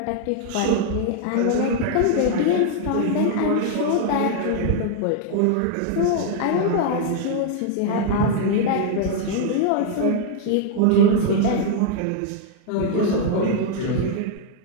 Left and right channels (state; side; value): different; both; correlation 0.00